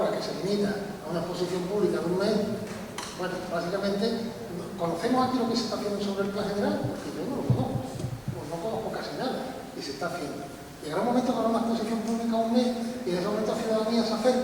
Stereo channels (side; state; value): both; identical; correlation 1.00